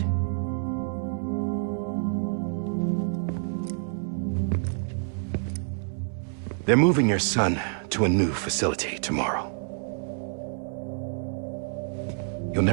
They're moving your son to a new facility tomorrow. You'll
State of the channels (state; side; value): silent; left; 60 dB below the other